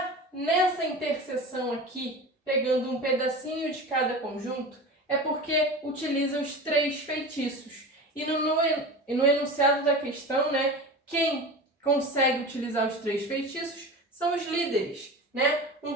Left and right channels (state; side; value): normal; both; correlation 0.31